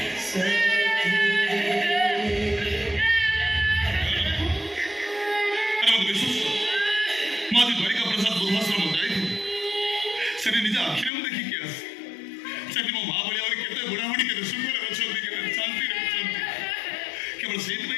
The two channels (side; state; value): right; drops out; at 11.1 s